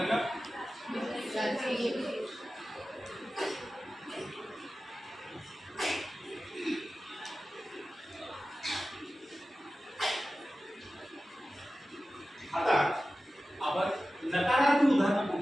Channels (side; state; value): both; normal; correlation 0.95